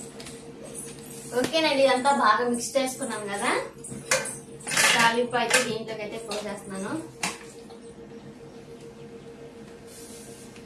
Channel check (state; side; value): identical; both; correlation 1.00